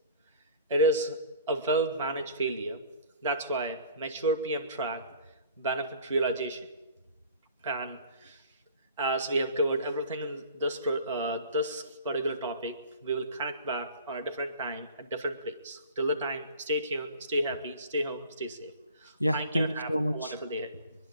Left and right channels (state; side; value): inverted; both; correlation -0.45